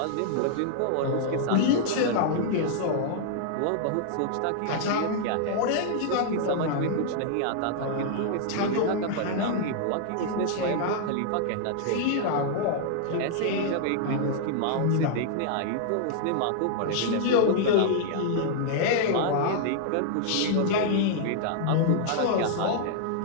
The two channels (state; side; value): different; both; correlation -0.01